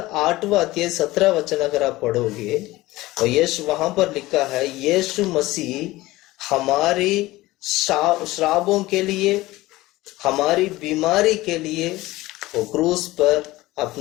8वां अध्याय 17 वचन अगर आप पढ़ोगे, और यीशु वहां पर लिखा है, यीशु मसीह हमारी श्रापों के लिए, हमारी बीमारी के लिए वो क्रूस पर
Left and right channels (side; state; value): right; quieter; 18.5 dB